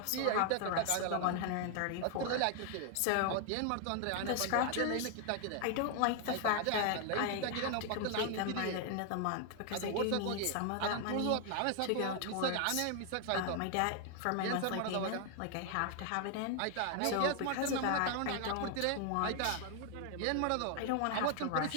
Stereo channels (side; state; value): both; different; correlation 0.00